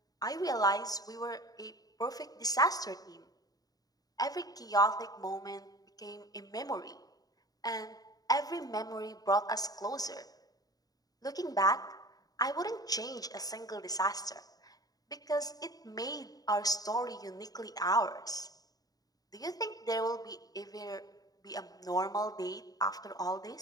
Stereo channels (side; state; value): right; late; 0.18 ms